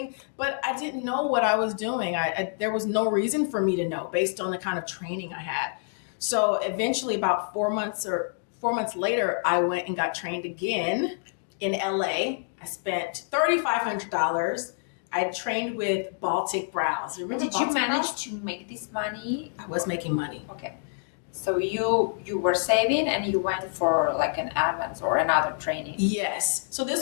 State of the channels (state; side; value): silent; right; digital silence